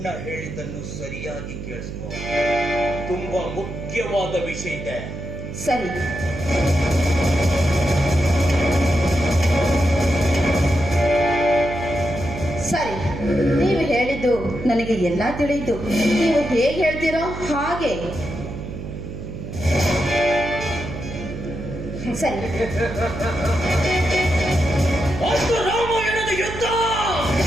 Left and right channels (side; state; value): right; noise; hum, 8 dB below the sound